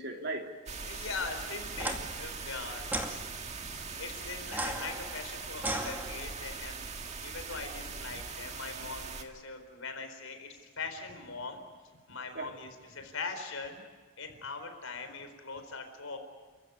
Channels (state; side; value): normal; both; correlation 0.00